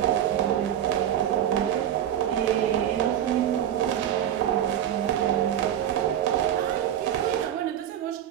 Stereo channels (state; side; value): quieter; left; 10.7 dB